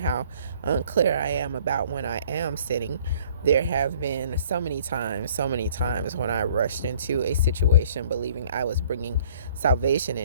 unclear I am about when I am sinning. There have been so many times when I rushed into a situation believing I was bringing salvation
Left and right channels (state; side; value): inverted; both; correlation -0.56